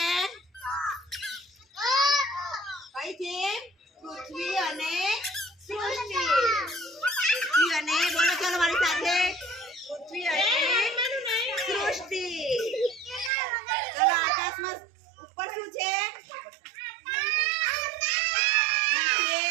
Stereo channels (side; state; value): left; drops out; at 13.3 s